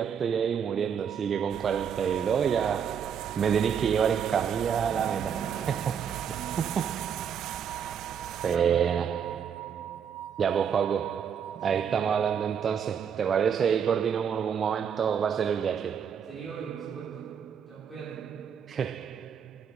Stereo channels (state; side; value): quieter; left; 7.6 dB